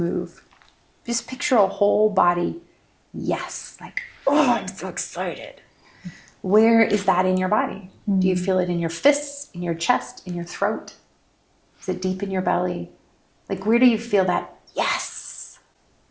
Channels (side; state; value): both; identical; correlation 1.00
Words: Just picture a whole body yes, like, oh, I'm so excited. Where is that in your body? Do you feel it in your fists, in your chest, in your throat? Is it deep in your belly? Like, where do you feel that yes?